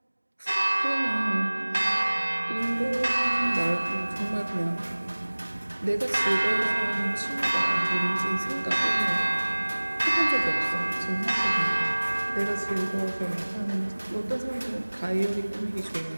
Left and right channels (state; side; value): inverted; both; correlation -1.00